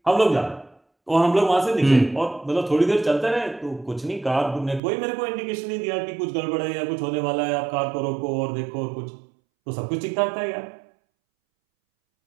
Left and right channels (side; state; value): left; drops out; at 4.8 s